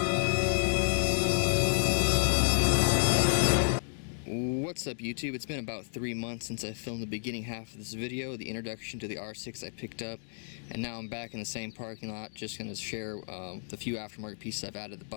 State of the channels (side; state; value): right; silent; digital silence